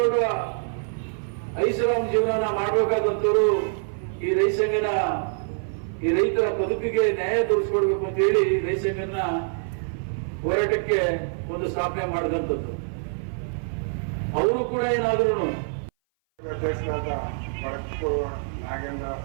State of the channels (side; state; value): left; silent; 58 dB below the other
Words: ಐಷಾರಾಮ್ ಜೀವನ ಮಾಡಬೇಕಾದಂತವರು ಈ ರೈತ ಸಂಘನ ಈ ರೈತರ ಬದುಕಿಗೆ ನ್ಯಾಯ ತೋರಿಸ್ಕೊಡ್ಬೇಕು ಅಂತ ಹೇಳಿ ರೈತ ಸಂಘನ ಹೋರಾಟಕ್ಕೆ ಒಂದು ಸ್ಥಾಪನೆ ಮಾಡಿದಂಥದ್ದು. ಅವರು ಕೂಡ ಏನಾದ್ರು ಅಧ್ಯಕ್ಷರಾದ ಬಡಕು ನಾಗೇಂದ್ರ